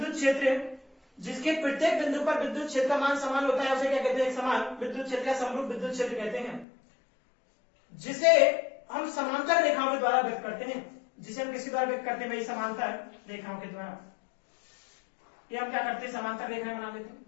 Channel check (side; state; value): right; drops out; at 6.7 s